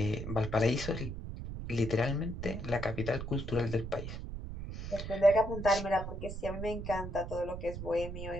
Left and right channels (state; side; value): noise; right; rumble, 7 dB below the sound